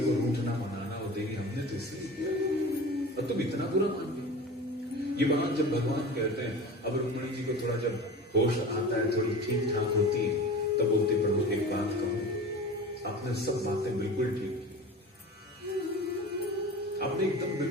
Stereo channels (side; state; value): both; normal; correlation 0.35